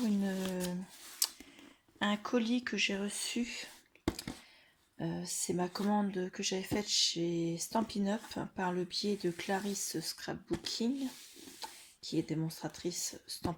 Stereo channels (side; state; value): both; identical; correlation 1.00